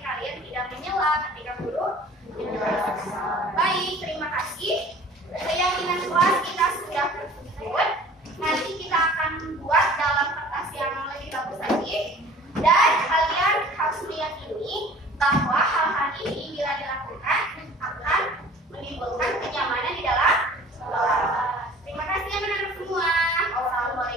kalian tidak menyela ketika guru menjelaskan. Baik, terima kasih. Keyakinan kelas kita sudah tersebut. Nanti kita akan buat dalam kertas yang lebih bagus lagi. Dan kalian harus meyakini bahwa hal-hal ini bila dilakukan akan menimbulkan kenyamanan di dalam kelas. Terima kasih anak-anak semua.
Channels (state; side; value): normal; both; correlation 0.47